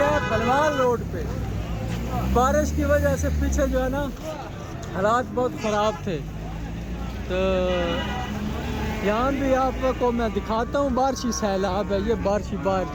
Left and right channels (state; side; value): identical; both; correlation 1.00